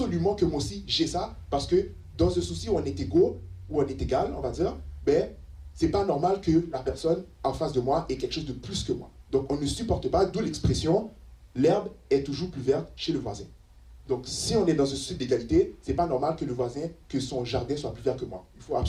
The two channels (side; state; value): both; identical; correlation 1.00